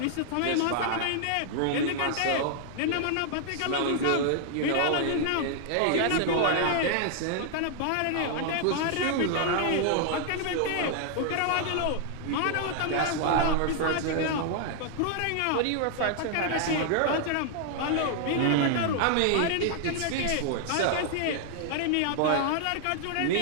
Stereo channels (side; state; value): both; different; correlation 0.00